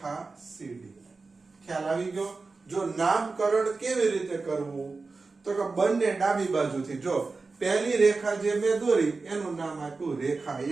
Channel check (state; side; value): quieter; left; 4.0 dB